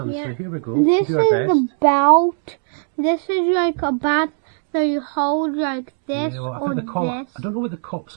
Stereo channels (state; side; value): silent; left; 59 dB below the other